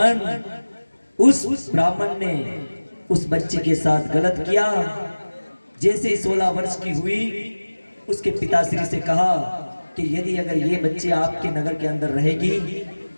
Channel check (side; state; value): both; inverted; correlation -1.00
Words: उस ब्राह्मण ने उस बच्चे के साथ गलत किया। जैसे ही 16 वर्ष की हुई, उसके पिताश्री से कहा कि यदि अगर ये बच्ची आपके नगर के अंदर रहेगी